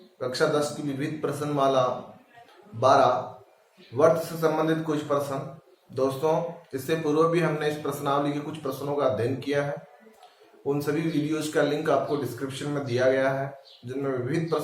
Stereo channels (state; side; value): identical; both; correlation 1.00